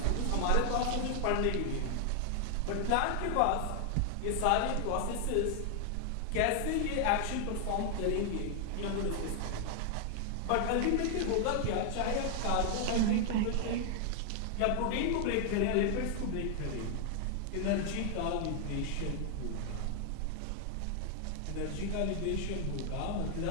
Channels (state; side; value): different; both; correlation 0.00